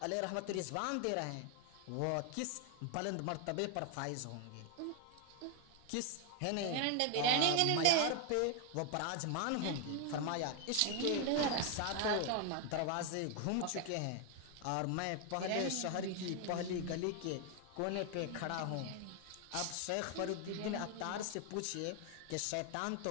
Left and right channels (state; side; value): different; both; correlation 0.01